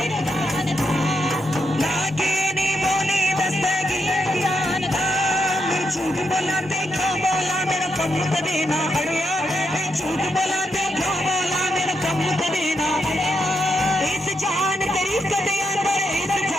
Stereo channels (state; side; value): normal; both; correlation 0.82